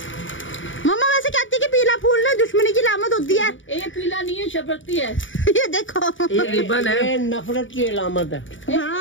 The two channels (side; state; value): right; late; 0.56 ms